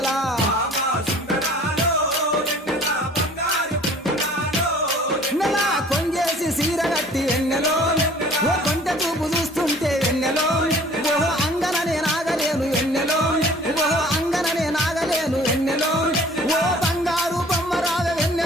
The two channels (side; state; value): both; normal; correlation 0.50